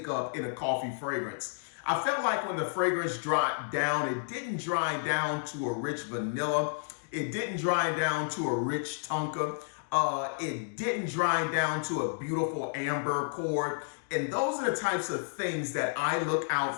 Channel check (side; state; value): right; silent; digital silence